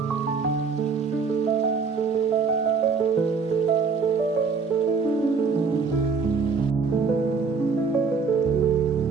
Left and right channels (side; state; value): left; quieter; 5.1 dB